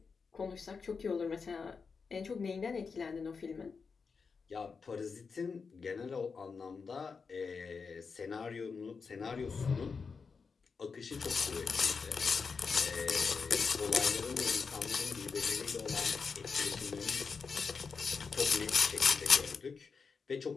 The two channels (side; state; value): right; quieter; 5.2 dB